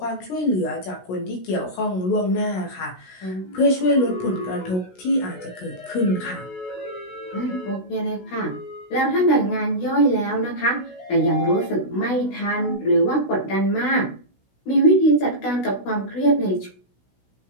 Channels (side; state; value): right; late; 16 ms